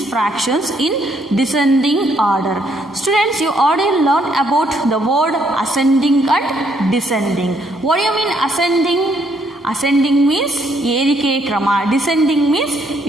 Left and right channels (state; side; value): normal; both; correlation 0.70